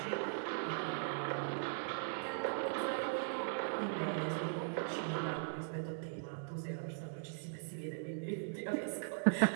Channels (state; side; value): silent; left; digital silence